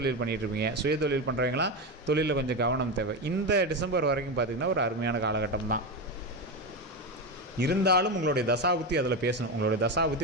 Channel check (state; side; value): normal; both; correlation 0.15